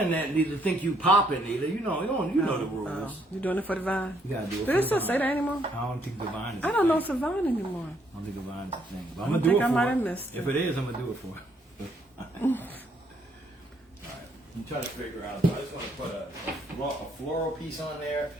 need to think you popping, either. You know the rules. Oh, you doing it for the vine? You gotta do it. Do for it the still vine. say that anymore? I don't think the vine is. I don't know it's a vine anymore. I don't think the vine is a thing. But I I'm gonna do think it I for might it. have missed If it. it is, I'm gonna do it for it. All right. I'm trying to figure out. I just want to put a floral piece on there.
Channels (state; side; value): normal; both; correlation 0.70